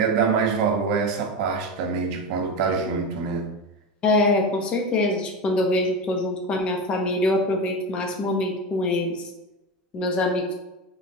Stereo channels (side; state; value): both; normal; correlation 0.20